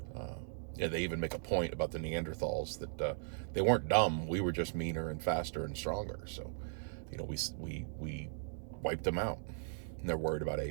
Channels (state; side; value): silent; left; 52 dB below the other